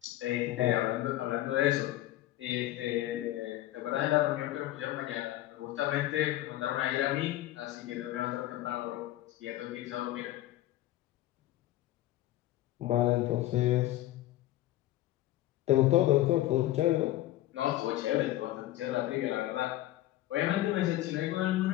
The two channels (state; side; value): quieter; right; 15.1 dB